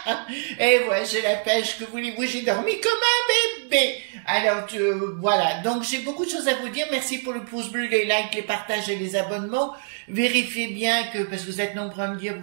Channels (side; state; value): left; silent; digital silence